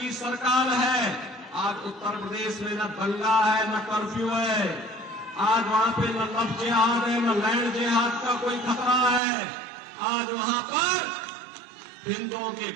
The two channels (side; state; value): left; drops out; at 9.2 s